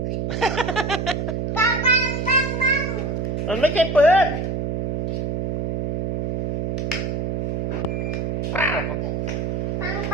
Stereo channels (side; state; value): right; noise; hum, 2 dB below the sound